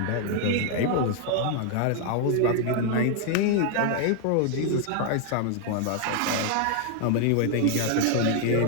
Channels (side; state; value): both; different; correlation 0.00